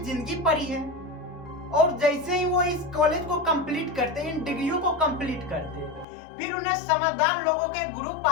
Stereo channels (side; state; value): right; drops out; at 6.1 s